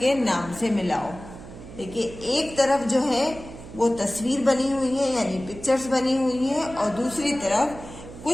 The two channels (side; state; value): right; noise; hum, 15 dB below the sound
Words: नाम से मिलाओ। देखिए, एक तरफ जो है वो तस्वीर बनी हुई है, यानी पिक्चर्स बनी हुई है, और दूसरी तरफ